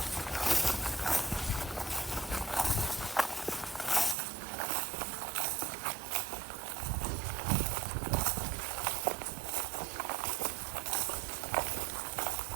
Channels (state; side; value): drops out; left; at 4.2 s